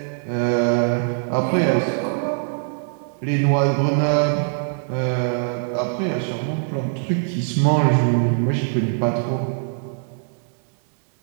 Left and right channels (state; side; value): silent; left; 63 dB below the other